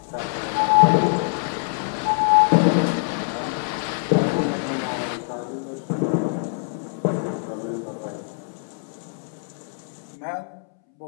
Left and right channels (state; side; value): silent; right; 63 dB below the other